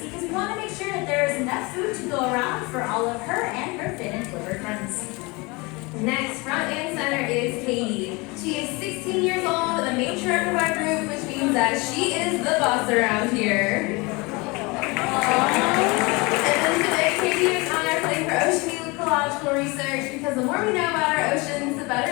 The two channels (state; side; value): quieter; right; 25.9 dB